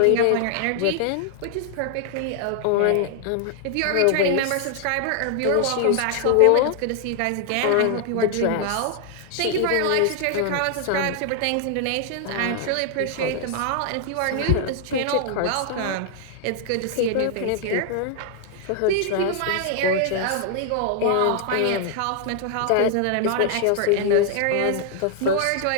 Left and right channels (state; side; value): different; both; correlation 0.00